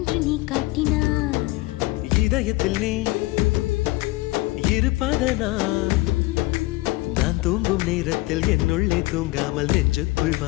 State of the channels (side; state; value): right; quieter; 21.0 dB